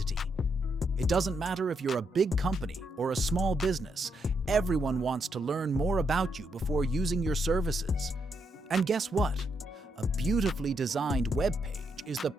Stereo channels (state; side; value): normal; both; correlation 0.79